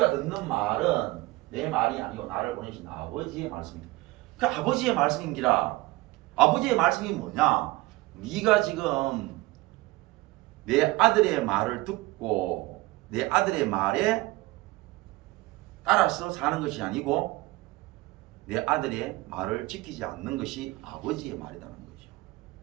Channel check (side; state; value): left; quieter; 20.8 dB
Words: 듣는 말은 내 말이 아니고 나를 보내신 아버지의 말씀입니다. 그 아버지의 말씀인기라. 아버지의 말씀이 뭐냐? 네가 지금 내 아들의 말을 듣고 내 아들의 말에 따라서 사는 것이 아니고 내 아들의 말을 지키지 않는 것이 아버지의 말이라는 거죠.